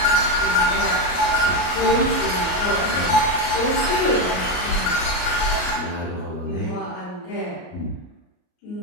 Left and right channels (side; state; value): right; late; 33 ms